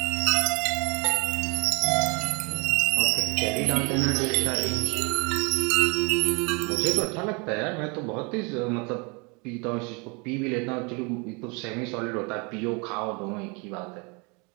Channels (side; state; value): left; quieter; 30.9 dB